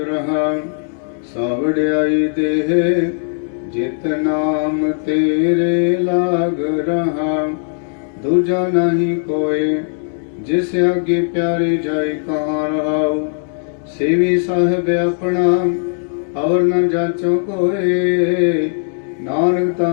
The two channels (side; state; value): right; silent; 68 dB below the other